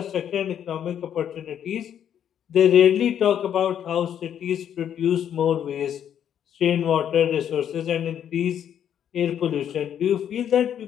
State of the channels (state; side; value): quieter; right; 9.4 dB